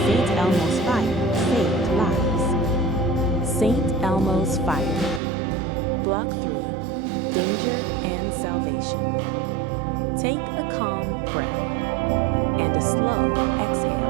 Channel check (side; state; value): left; drops out; at 5.2 s